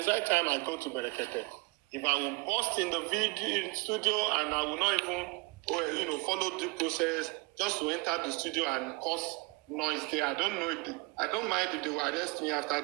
that time I go to Berekete. If I will burst in the video studio and I will not even, follow the process just to enter the studio and cause noise there, I don't know I don't mind if they will arrest me after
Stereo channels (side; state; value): left; quieter; 27.0 dB